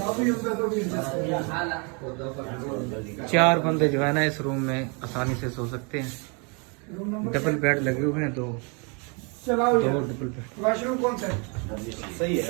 4 बंदे जो है ना इस रूम में आसानी से सो सकते हैं। डबल बेड लगे हुए हैं, 2 डबल बेड। वॉशरूम कौन सा है? सही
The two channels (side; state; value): left; quieter; 34.0 dB